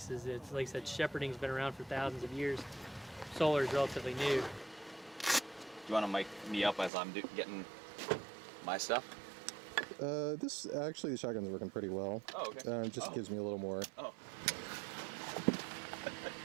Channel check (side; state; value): left; drops out; at 6.9 s